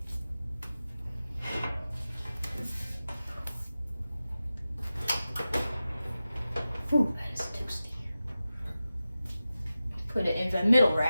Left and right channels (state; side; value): inverted; both; correlation -0.94